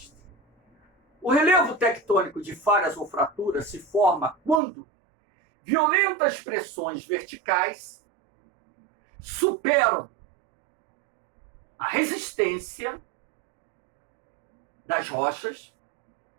O relevo tectônico de falhas ou fraturas se forma quando violentas pressões verticais superam a resistência das rochas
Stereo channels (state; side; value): drops out; left; at 4.6 s